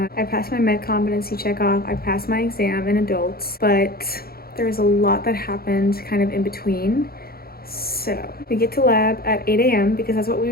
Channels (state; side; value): late; right; 0.44 ms